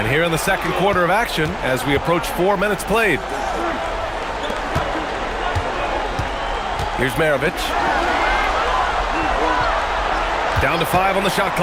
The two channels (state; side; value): identical; both; correlation 1.00